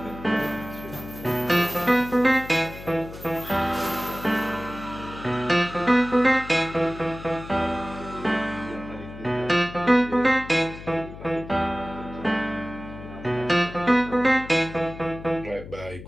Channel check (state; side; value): noise; left; hum, 14 dB below the sound